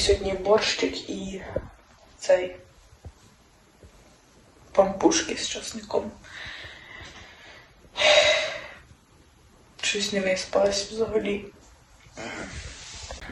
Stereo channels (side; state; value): both; identical; correlation 1.00